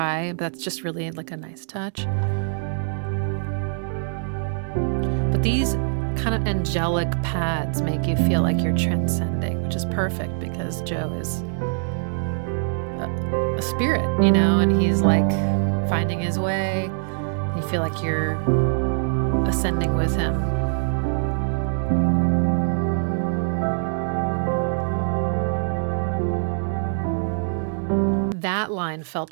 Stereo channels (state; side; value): silent; left; 63 dB below the other